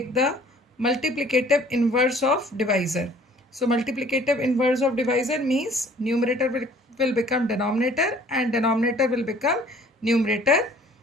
the multiplicative inverse of divisor. So multiplicative inverse of divisor means numerator will become denominator and denominator will become numerator,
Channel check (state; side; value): normal; both; correlation 0.54